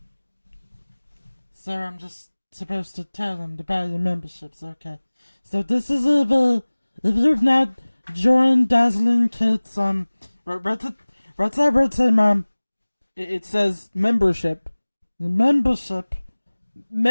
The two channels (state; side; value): inverted; both; correlation -1.00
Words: Sir, I'm just supposed to tell them to buy your memberships, okay. So this is if you've not joined Dazzling Kids, what's that word say, ma'am? It says membership. Membership.